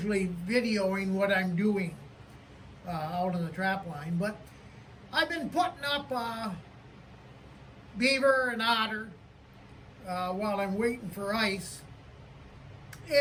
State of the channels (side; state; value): both; identical; correlation 1.00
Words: videoing what I'm doing out on the trap line, but I've been putting up beaver and otter while I'm waiting for ice.